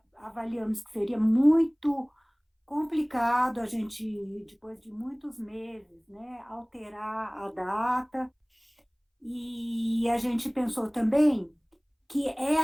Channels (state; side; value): identical; both; correlation 1.00